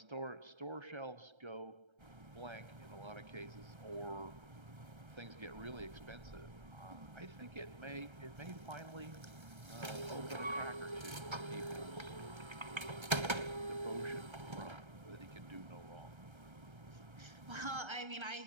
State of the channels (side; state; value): left; late; 1.3 ms